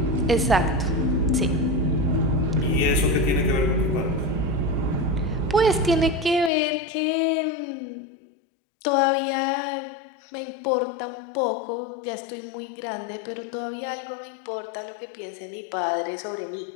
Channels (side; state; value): right; drops out; at 6.5 s